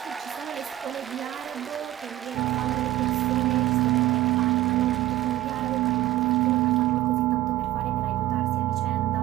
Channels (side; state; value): left; quieter; 15.0 dB